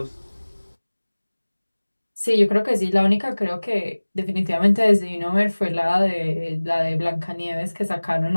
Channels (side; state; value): both; inverted; correlation -1.00